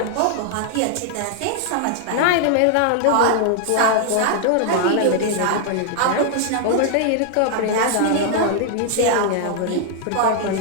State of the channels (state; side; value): different; both; correlation 0.00